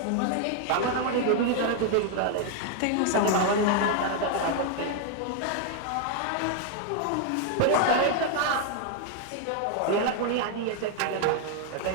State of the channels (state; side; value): different; both; correlation 0.00